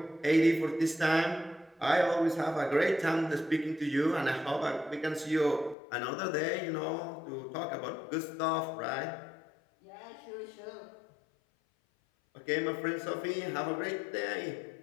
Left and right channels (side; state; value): right; drops out; at 5.8 s